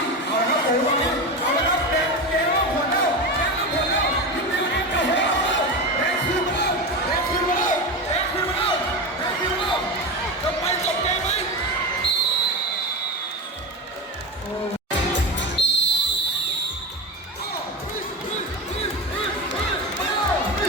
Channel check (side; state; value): both; normal; correlation 0.22